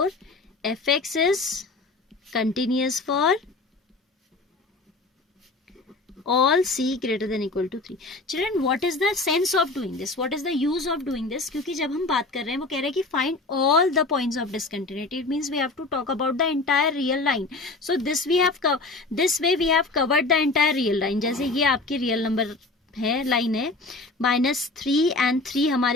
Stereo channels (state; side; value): quieter; right; 3.3 dB